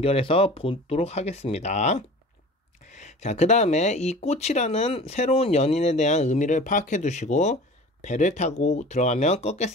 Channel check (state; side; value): normal; both; correlation 0.40